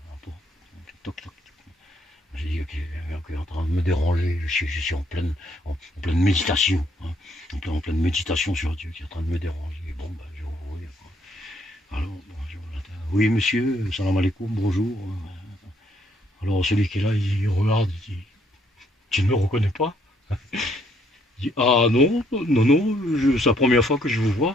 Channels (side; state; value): both; normal; correlation 0.69